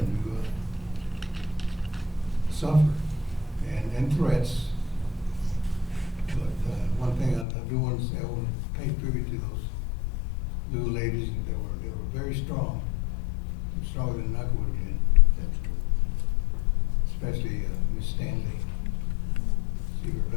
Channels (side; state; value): right; drops out; at 7.5 s